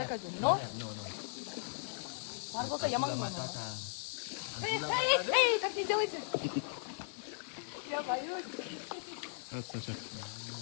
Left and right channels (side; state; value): right; silent; digital silence